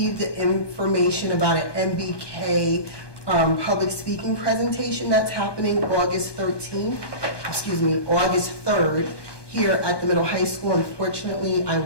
information about an MBK public speaking presentation that's happening August 3rd here at the middle high school. Unfortunately, I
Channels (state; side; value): late; right; 1.2 ms